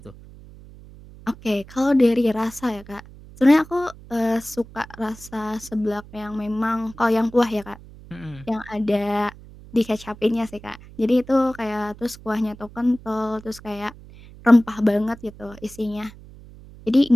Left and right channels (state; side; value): noise; right; hum, 19 dB below the sound